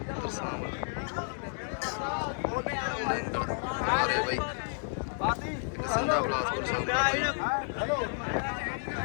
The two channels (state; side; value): silent; right; 57 dB below the other